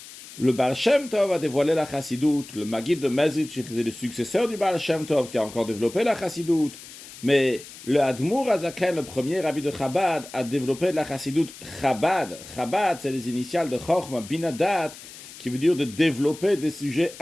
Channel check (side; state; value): left; noise; hiss, 16 dB below the sound